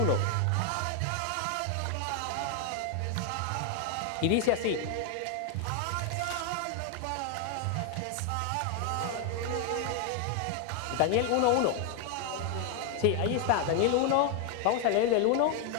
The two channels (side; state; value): both; different; correlation 0.01